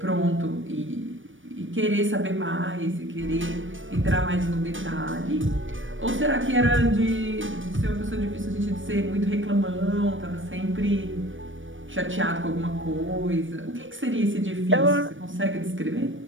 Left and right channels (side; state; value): left; late; 0.57 ms